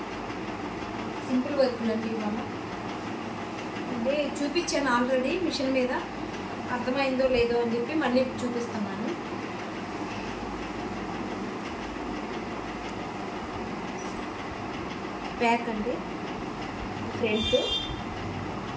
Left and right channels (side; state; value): both; identical; correlation 1.00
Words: సింపుల్ వర్క్లు అండి. ఇవాళ అంటే చూపించాను ఆల్రెడీ మిషన్ మీద, అర్థమైందో లేదో అని చెప్పి మళ్ళీ చూపిస్తున్నాను. బ్యాక్ అండి, ఫ్రంట్,